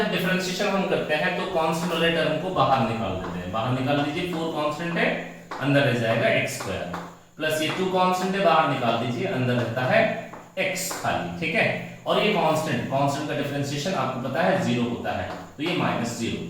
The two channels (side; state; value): both; identical; correlation 1.00